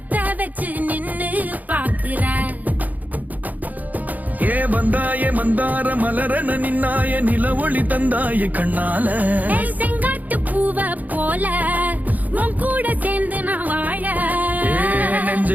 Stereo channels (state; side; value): late; left; 0.080 ms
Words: வச்சு நின்னு பாக்குற. ஏ வந்தாய மந்தார மலரன நின்னாய நில ஒளி தந்தாய கண்ணால. செங்காட்டு பூவ போல உன் கூட சேர்ந்து நான் வாழ.